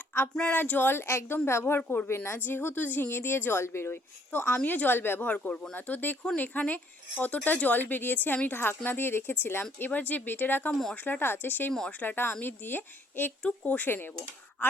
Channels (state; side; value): normal; both; correlation 0.65